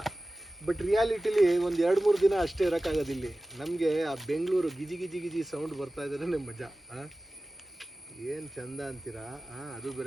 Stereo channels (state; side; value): normal; both; correlation 0.96